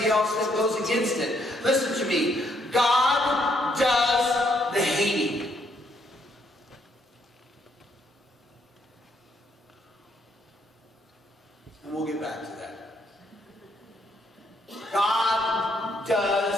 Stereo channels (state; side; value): normal; both; correlation 0.72